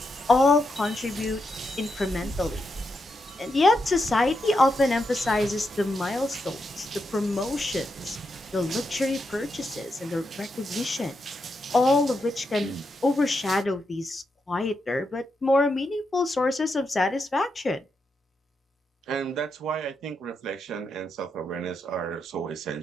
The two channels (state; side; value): normal; both; correlation 0.83